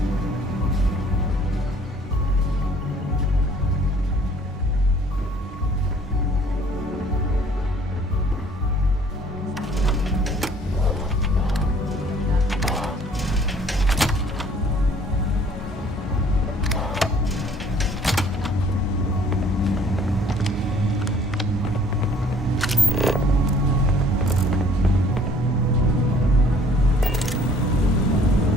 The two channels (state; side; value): normal; both; correlation 0.56